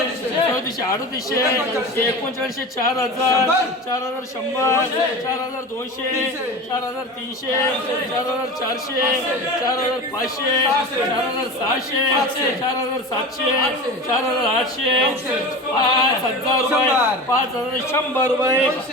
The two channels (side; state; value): both; normal; correlation 0.31